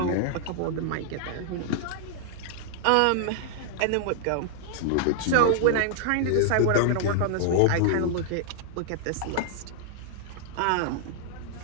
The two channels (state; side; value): different; both; correlation -0.01